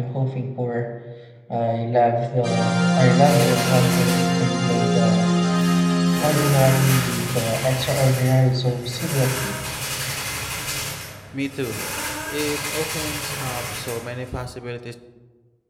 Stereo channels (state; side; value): identical; both; correlation 1.00